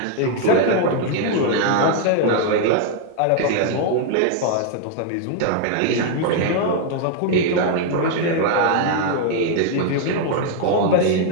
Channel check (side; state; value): both; different; correlation 0.00